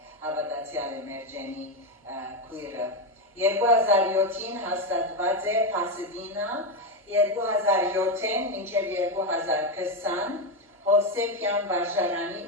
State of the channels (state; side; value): normal; both; correlation 0.09